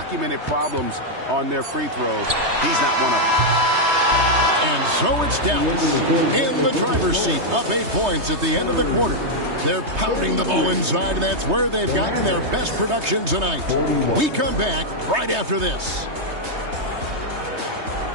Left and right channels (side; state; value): left; late; 3.2 ms